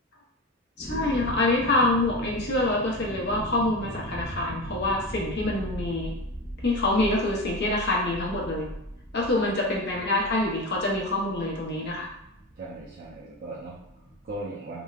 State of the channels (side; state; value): both; normal; correlation 0.25